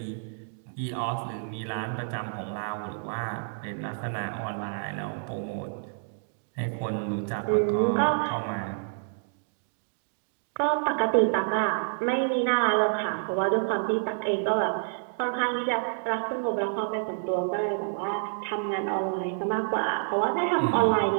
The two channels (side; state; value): left; silent; digital silence